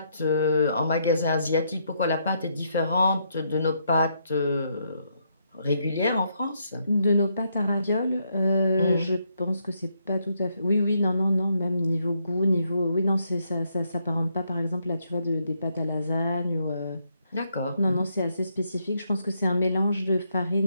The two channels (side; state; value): both; inverted; correlation -0.76